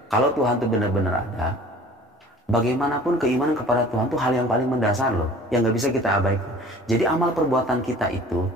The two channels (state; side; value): normal; both; correlation 0.46